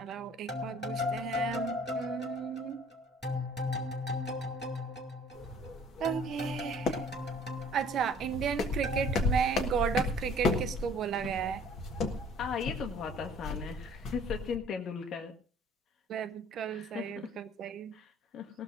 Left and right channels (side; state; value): both; normal; correlation 0.54